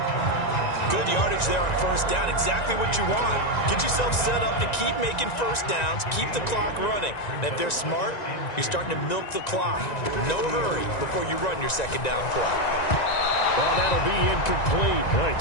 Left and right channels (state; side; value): late; right; 1.9 ms